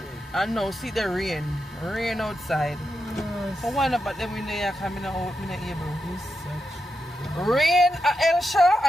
no, see the rain. Rain outside. So why not but them in there coming out, I'm not able. Rain, a Hellshire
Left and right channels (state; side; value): normal; both; correlation 0.87